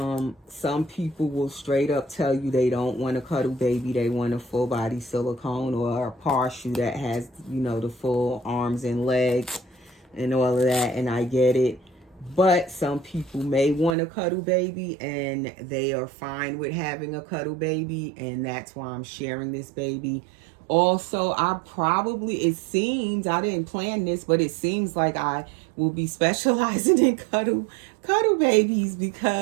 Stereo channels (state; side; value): drops out; left; at 14.0 s